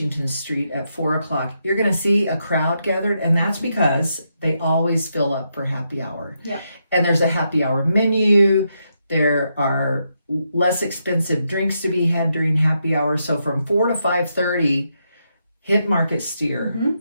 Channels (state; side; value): inverted; both; correlation -0.81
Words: Street at 4 o'clock, you're going to see a crowd gathered, and that's because they always fill up for happy hour. Yep. And there's a happy hour menu. There are less expensive drinks to be had during happy hour. So from 4 to 5:30, hit Market Steer